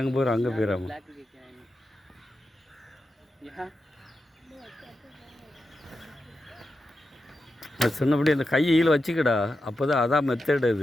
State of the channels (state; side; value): normal; both; correlation 0.89